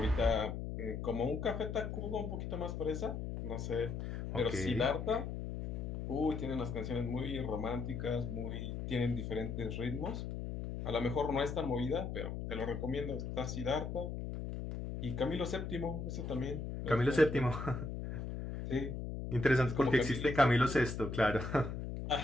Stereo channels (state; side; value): noise; left; hum, 5 dB below the sound